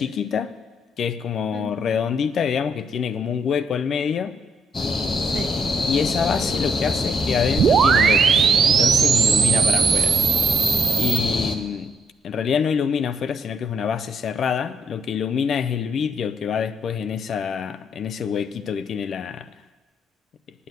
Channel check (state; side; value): normal; both; correlation 0.69